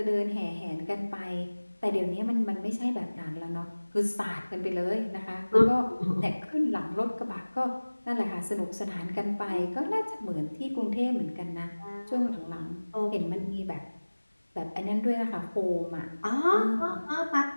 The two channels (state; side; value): inverted; both; correlation -1.00